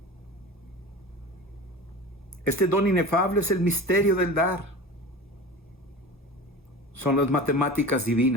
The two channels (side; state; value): both; normal; correlation 0.34